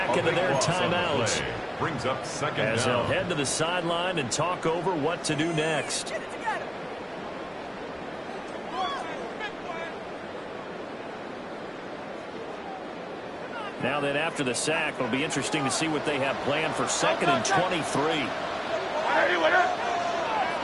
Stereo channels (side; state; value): both; identical; correlation 1.00